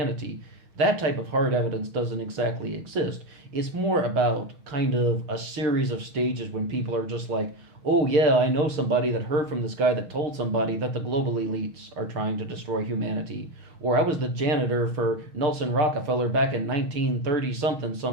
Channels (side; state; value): left; late; 6.3 ms